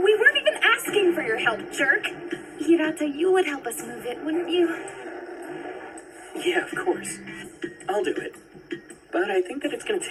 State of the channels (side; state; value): both; identical; correlation 1.00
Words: weren't even asking for your help, jerk. Hirata, you would help us move it, wouldn't you? Yeah, of course. I'll do it. But I think that it's gonna